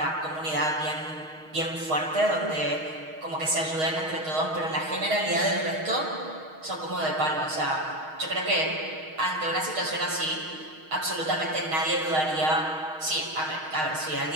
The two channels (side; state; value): left; late; 6.4 ms